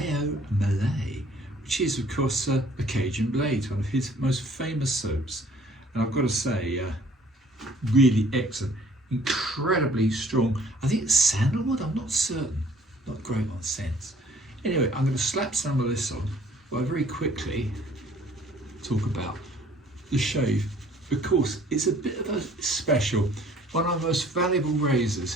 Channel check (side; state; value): both; normal; correlation 0.57